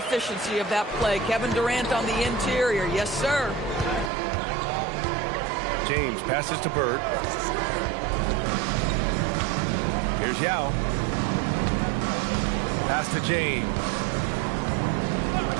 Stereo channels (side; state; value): left; drops out; at 4.1 s